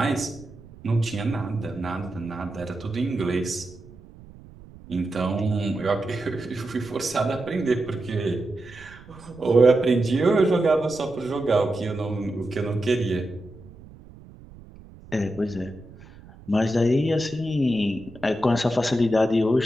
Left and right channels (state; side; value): noise; right; rumble, 20 dB below the sound